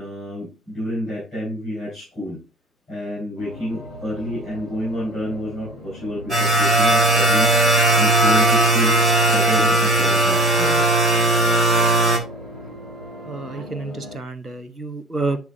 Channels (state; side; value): normal; both; correlation 0.39